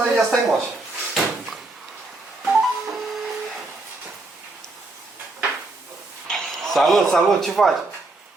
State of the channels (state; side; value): quieter; left; 3.1 dB